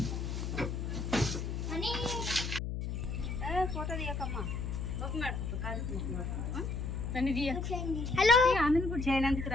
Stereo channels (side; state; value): left; noise; hum, 3 dB below the sound